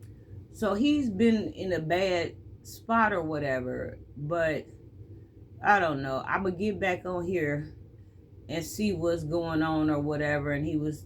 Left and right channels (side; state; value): both; identical; correlation 1.00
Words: So he's been in a bad spot or whatever. But I don't know, I'm gonna get back on here and see what's going on or whatever. And he was